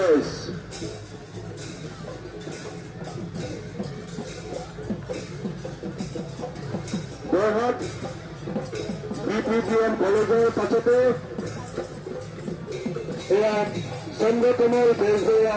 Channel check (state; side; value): identical; both; correlation 1.00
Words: Jorhat BPBN কলেজৰ পাছতে এয়া চন্দ্ৰকমল বেজবৰুৱা